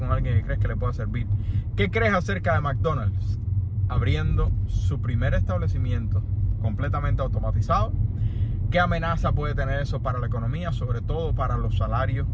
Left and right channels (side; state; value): both; identical; correlation 1.00